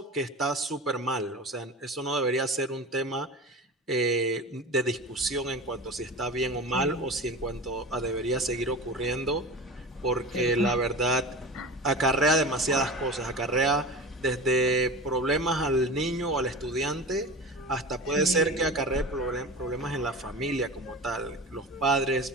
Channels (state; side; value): normal; both; correlation 0.32